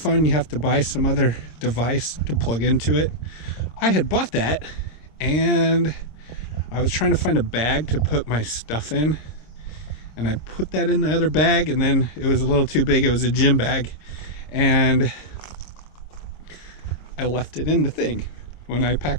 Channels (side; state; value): right; late; 26 ms